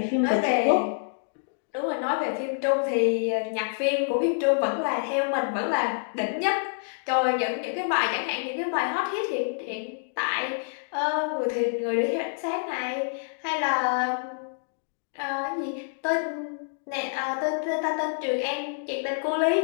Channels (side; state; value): right; silent; digital silence